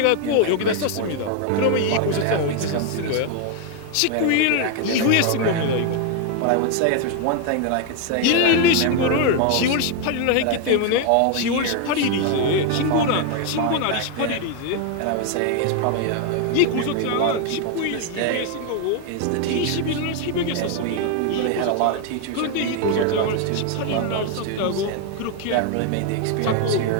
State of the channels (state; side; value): different; both; correlation 0.01